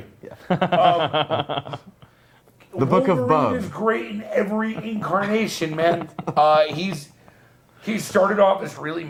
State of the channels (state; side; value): identical; both; correlation 1.00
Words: The Book of Wolverine Bub. is great in every incarnation, man. He started off as really